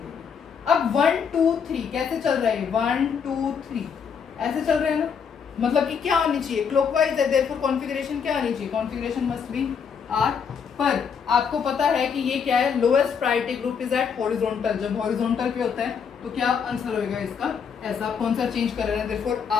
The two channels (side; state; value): right; quieter; 6.7 dB